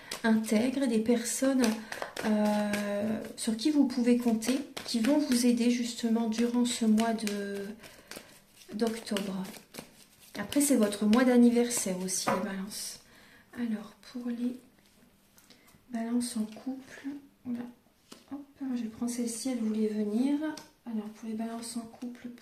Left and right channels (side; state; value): both; identical; correlation 1.00